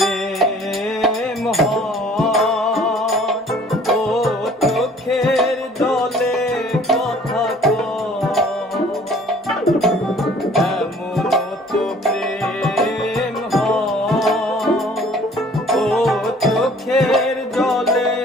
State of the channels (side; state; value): both; normal; correlation 0.54